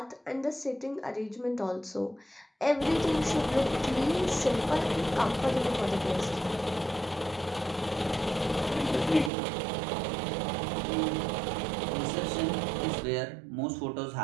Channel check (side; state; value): left; drops out; at 9.3 s